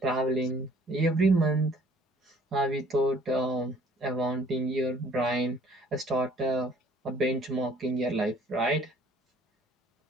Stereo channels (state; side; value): normal; both; correlation 0.57